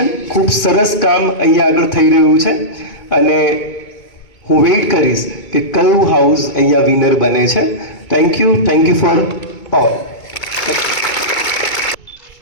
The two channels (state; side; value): late; right; 2.3 ms